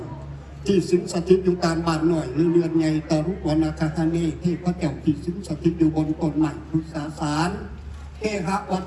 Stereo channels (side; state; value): both; identical; correlation 1.00